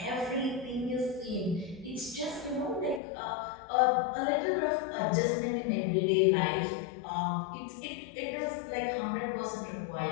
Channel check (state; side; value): drops out; right; at 3.0 s